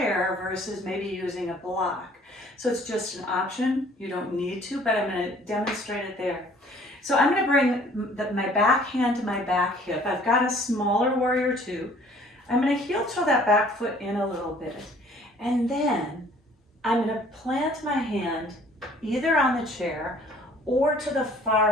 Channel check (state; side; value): normal; both; correlation 0.55